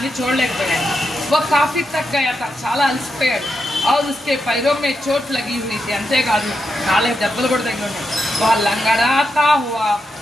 చూడలేకపోయాడు। वो काफी थक गया था, చాలా అలసిపోయాడు। और उसके पैरों में चोट लगी हुई थी, అంతేకాదు కాళ్ళకి దెబ్బలు కూడా తగిలి ఉన్నాయి। वह लंगड़ाता हुआ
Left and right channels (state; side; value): normal; both; correlation 0.85